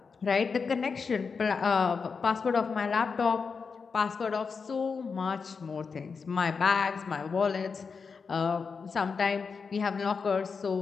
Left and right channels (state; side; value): quieter; right; 5.3 dB